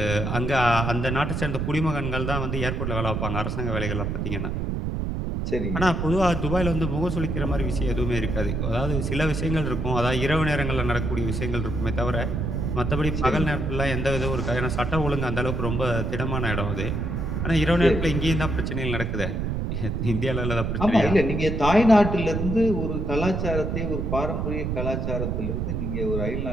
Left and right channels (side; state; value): right; noise; rumble, 1 dB below the sound